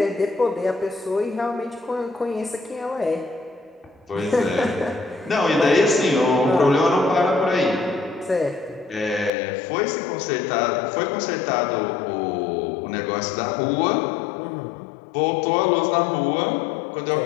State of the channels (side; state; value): right; drops out; at 9.3 s